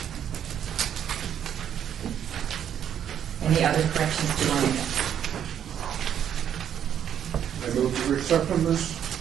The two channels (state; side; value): quieter; left; 9.4 dB